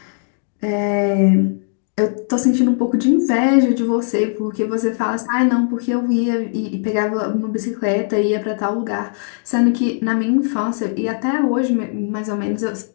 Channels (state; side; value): silent; right; digital silence